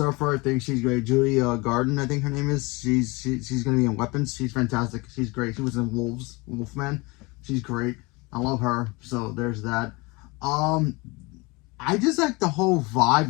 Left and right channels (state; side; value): quieter; right; 25.5 dB